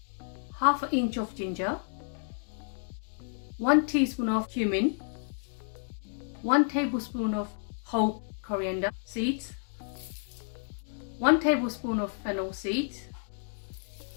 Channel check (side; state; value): right; silent; digital silence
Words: half an inch of ginger, 1 teaspoon of cumin, 1 tablespoon of whole coriander seeds, 1 tablespoon of fennel seeds,